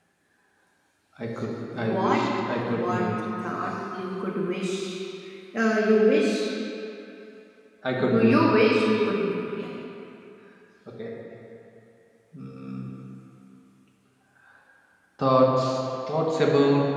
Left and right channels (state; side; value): identical; both; correlation 1.00